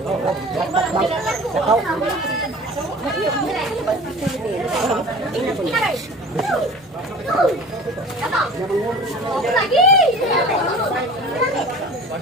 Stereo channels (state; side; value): normal; both; correlation 0.41